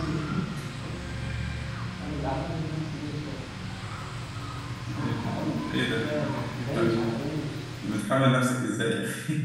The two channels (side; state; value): both; identical; correlation 1.00